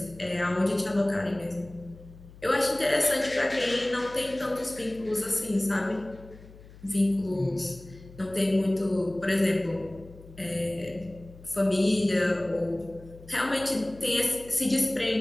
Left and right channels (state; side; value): noise; left; hum, 20 dB below the sound